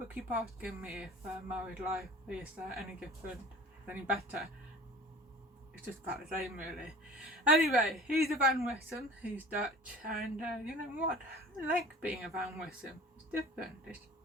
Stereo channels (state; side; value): normal; both; correlation 0.43